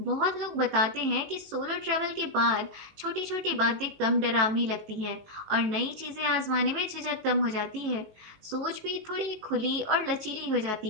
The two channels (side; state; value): left; late; 19 ms